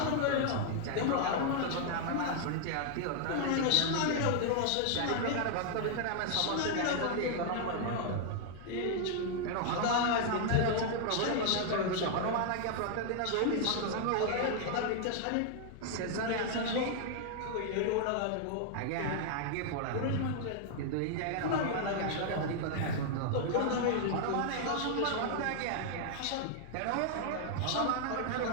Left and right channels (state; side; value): different; both; correlation 0.00